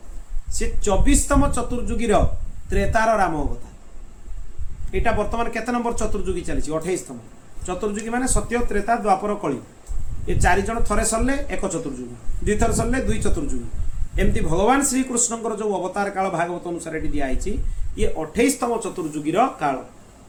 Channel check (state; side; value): identical; both; correlation 1.00